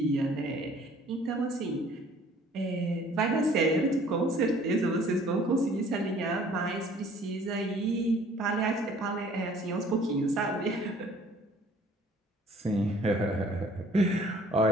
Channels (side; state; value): both; normal; correlation 0.55